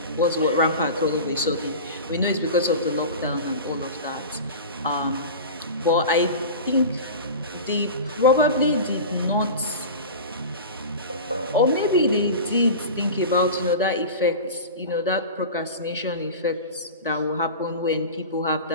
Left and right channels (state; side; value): inverted; both; correlation -0.31